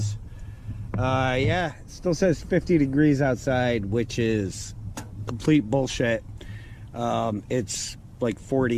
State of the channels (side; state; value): both; identical; correlation 1.00